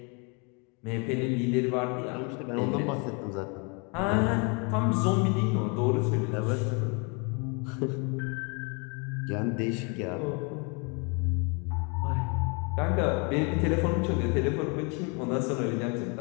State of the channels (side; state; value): right; quieter; 33.4 dB